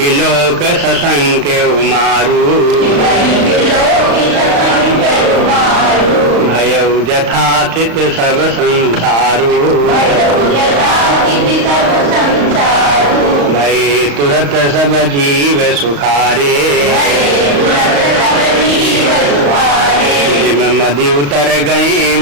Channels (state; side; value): late; left; 35 ms